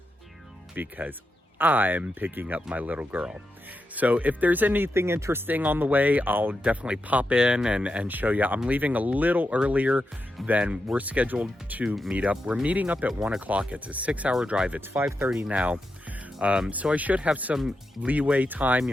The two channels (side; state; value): both; normal; correlation 0.87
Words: because I'm picking up my little girl. So if there's anything interesting on the way, I'll definitely pop in and show you. I'm leaving a little earlier than we're scheduled to meet up. We're meeting up at 1 o'clock. It's a 6-hour drive. It's 5:30 now. So I should have some leeway time,